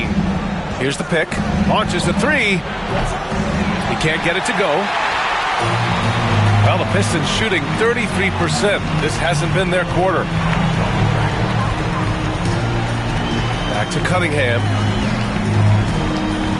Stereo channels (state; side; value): identical; both; correlation 1.00